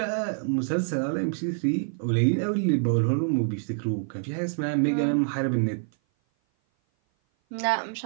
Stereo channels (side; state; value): left; silent; 56 dB below the other